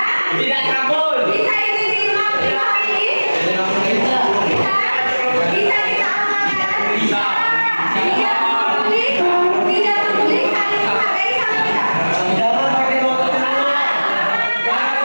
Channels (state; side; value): inverted; both; correlation -1.00